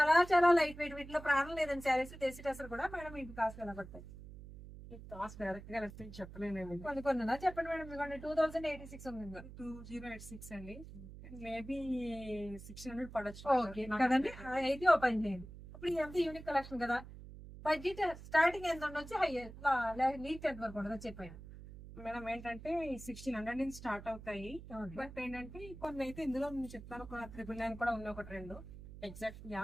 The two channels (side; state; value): right; noise; hum, 14 dB below the sound